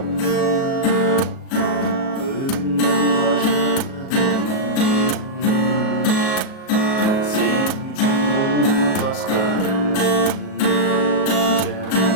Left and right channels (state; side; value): late; right; 37 ms